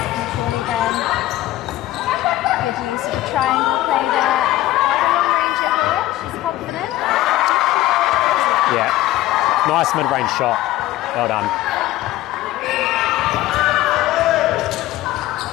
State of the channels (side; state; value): right; quieter; 15.7 dB